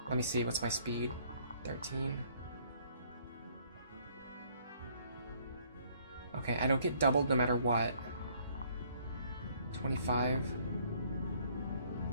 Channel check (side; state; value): both; inverted; correlation -0.63